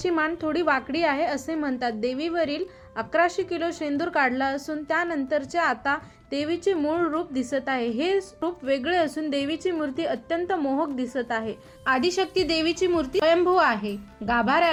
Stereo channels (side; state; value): both; identical; correlation 1.00